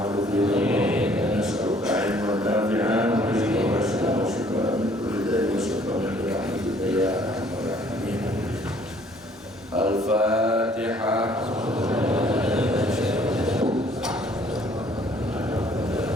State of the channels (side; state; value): both; normal; correlation 0.59